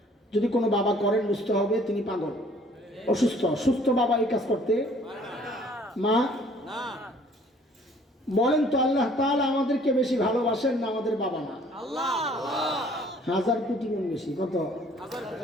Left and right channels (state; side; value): normal; both; correlation 0.57